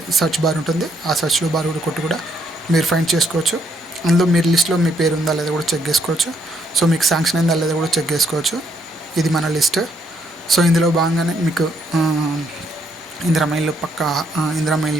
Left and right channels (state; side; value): normal; both; correlation 0.72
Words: సర్చ్ బార్ ఉంటుంది. ఆ సర్చ్లో బార్ కూడా కొట్టి కూడా మీరు ఫైండ్ చేసుకోవచ్చు. అందులో మీరు లిస్ట్లో మీ పేరు ఉందా లేదా కూడా చెక్ చేసుకోవచ్చు. సో మీకు శాంక్షన్ అయిందా లేదా కూడా చెక్ చేసుకోవచ్చు. ఇది మన లిస్ట్. సో ఇందులో భాగంగానే మీకు ఇందిరమ్మ ఇల్లు ఇందిరమ్మ